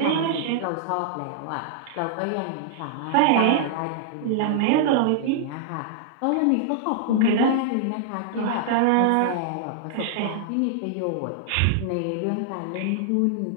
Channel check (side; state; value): both; different; correlation -0.01